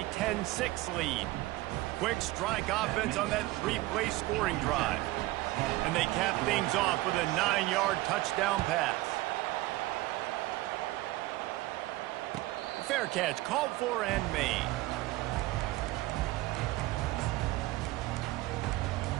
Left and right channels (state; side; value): quieter; left; 18.7 dB